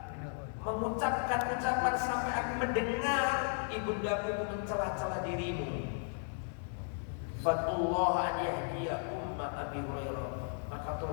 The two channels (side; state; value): right; silent; 54 dB below the other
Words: mengucapkan ucapan sampai aku mendengar ibundaku itu mencela-cela dirimu. Fatullah an yahdiya umma Abi Hurairah. Maka